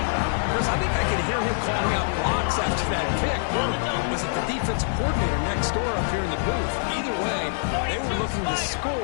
Chris, I think I can hear him calling out blocks after that pick. Was it the defensive coordinator next door up here in the booth? Either way, they were looking to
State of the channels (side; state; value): right; silent; 62 dB below the other